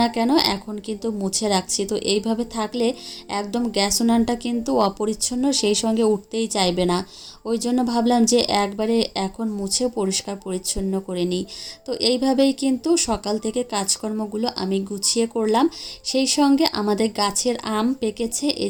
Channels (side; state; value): both; identical; correlation 1.00